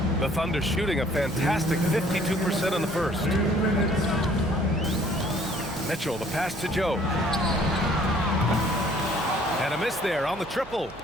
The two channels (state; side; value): noise; right; hum, 21 dB below the sound